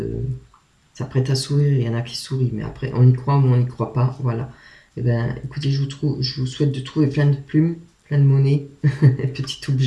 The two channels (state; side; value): identical; both; correlation 1.00